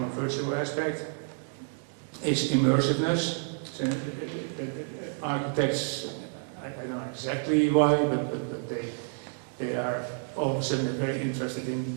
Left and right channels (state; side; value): silent; left; 58 dB below the other